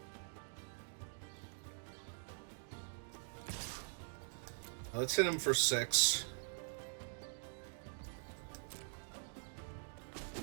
Let's hit him for 6.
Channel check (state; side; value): silent; left; digital silence